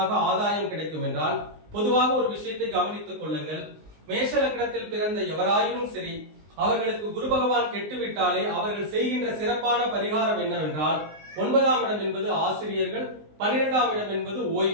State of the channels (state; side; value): late; left; 19 ms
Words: ஆதாயம் கிடைக்கும் என்றால், பொதுவாக ஒரு விஷயத்தை கவனித்துக் கொள்ளுங்கள். மேஷ லக்னத்தில் பிறந்த எவராயினும் சரி, அவர்களுக்கு குரு பகவான் கெட்டுவிட்டாலே அவர்கள் செய்கின்ற சிறப்பான பரிகாரம் என்னவென்றால், 9ஆம் இடம் என்பது ஆசிரியர்கள், 12ஆம் இடம் என்பது